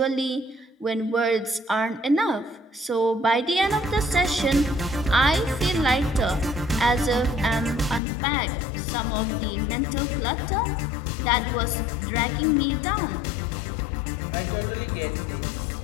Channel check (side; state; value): right; drops out; at 8.0 s